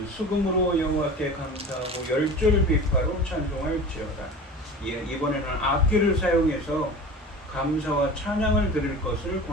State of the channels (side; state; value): both; normal; correlation 0.35